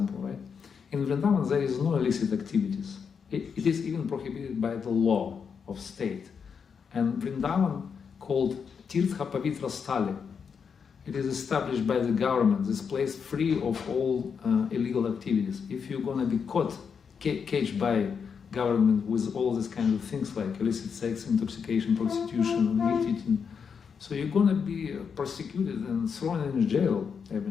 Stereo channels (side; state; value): right; quieter; 6.4 dB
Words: right? In Vrindavan, there is no illicit activities. It is even prohibited by the law of state. And Vrindavan, called Tirtha Pavitra Stali, it is established by the government, this place free of all illegal activities. If you're going to be caged by government with all these kind of things like illicit sex, intoxication, prostitution, meat eating, so you're going to be persecuted and thrown in jail.